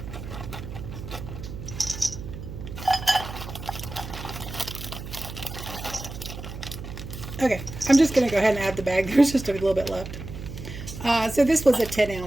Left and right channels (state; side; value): noise; right; hum, 10 dB below the sound